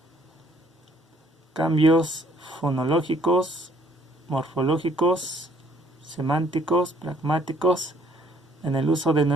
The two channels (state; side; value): normal; both; correlation 0.62